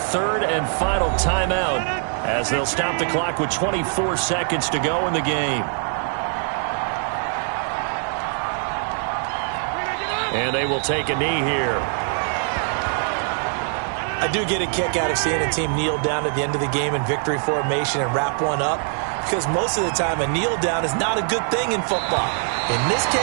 and final timeout as they'll stop the clock with 24 seconds to go in the game. And they will take a knee here. I do get a kick out of seeing a team kneel down at the end of the game in victory formation and wrap one up, because most of the time a kneel down is not a good thing in football. In this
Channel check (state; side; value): silent; left; 59 dB below the other